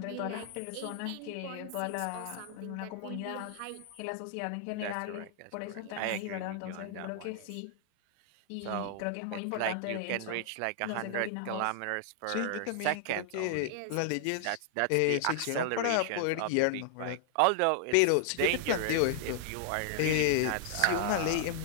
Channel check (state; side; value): different; both; correlation -0.01